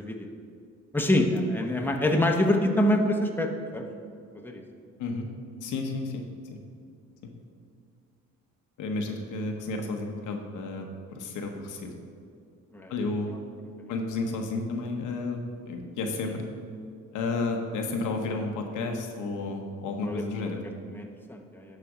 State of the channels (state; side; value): normal; both; correlation 0.59